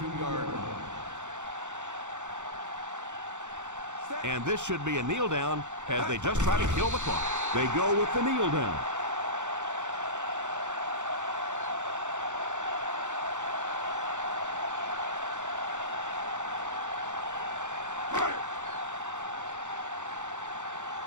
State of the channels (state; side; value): late; left; 0.85 ms